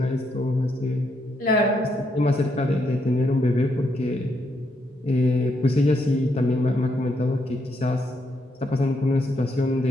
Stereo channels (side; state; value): both; normal; correlation 0.77